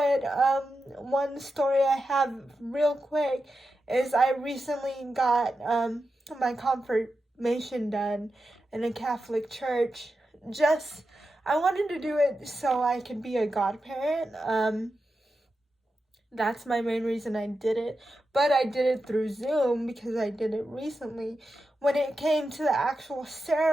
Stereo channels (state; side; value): normal; both; correlation 0.90